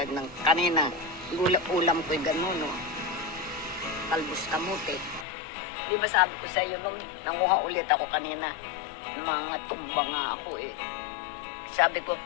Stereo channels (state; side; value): drops out; right; at 5.2 s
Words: ng kanina. Ulam ko'y gano'n, no? Talbos kamote. Di ba sabi ko sa iyo nung nanguha ulit ako kanina, mga tumba nga ako eh. Sabi ko,